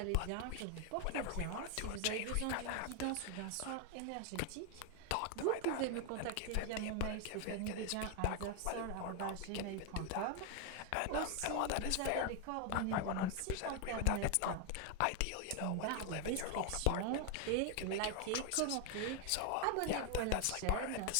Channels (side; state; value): both; different; correlation 0.01